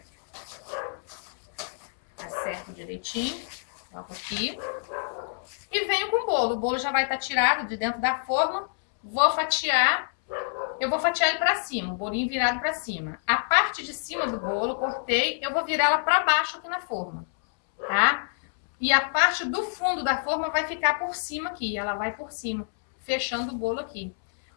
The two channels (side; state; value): right; silent; 60 dB below the other